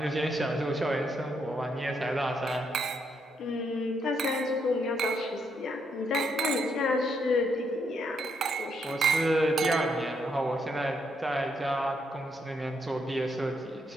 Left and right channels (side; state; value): both; normal; correlation 0.76